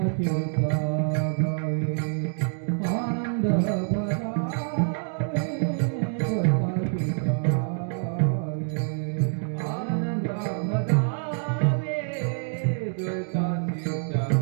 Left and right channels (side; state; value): left; silent; 61 dB below the other